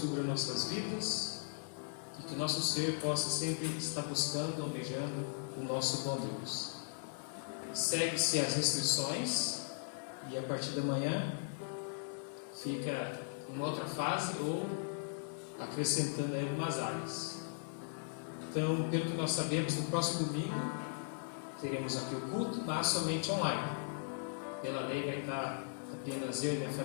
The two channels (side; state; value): right; silent; digital silence